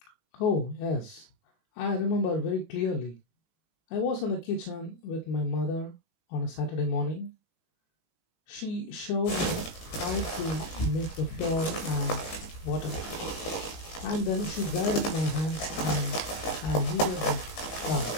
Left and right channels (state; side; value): late; right; 19 ms